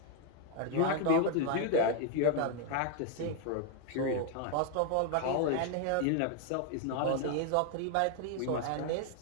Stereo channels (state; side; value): different; both; correlation 0.00